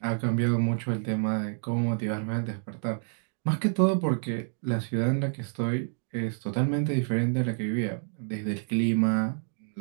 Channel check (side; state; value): left; silent; digital silence